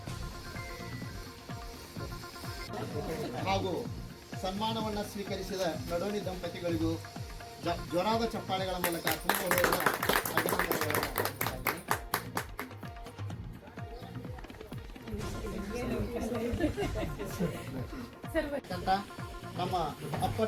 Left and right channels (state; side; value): identical; both; correlation 1.00